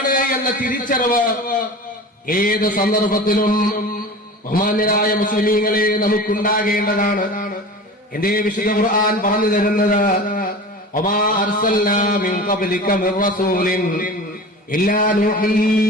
എന്ന തിരിച്ചറിവ് ഏത് സന്ദർഭത്തിലും ബഹുമാന്യരായ മുസ്ലിമീങ്ങളെ നമുക്കുണ്ടാകേണ്ടതാണ്. എന്റെ വിശുദ്ധ ഖുർആൻ പറഞ്ഞു തരുന്നത്, വമാ അർസൽനാ മിൻ ഖബ്ലിക മിർ റസൂലിൻ ഇല്ലാ നൂഹി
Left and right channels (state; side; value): normal; both; correlation 0.35